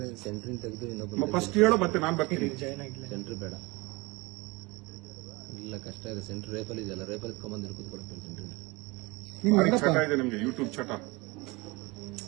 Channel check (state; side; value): quieter; left; 24.5 dB